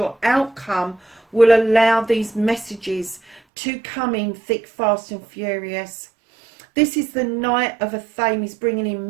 outcome will allow these messages to come in thick, fast and furious. This is the Knight of Athame, bringing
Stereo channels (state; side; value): drops out; left; at 3.4 s